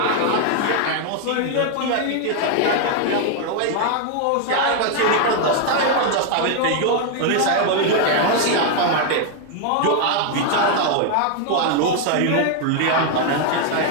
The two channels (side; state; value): both; different; correlation 0.00